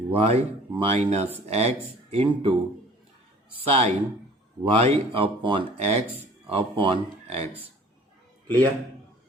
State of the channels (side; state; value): both; normal; correlation 0.50